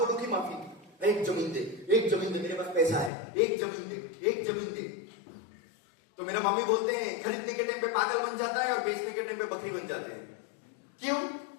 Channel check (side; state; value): right; drops out; at 3.1 s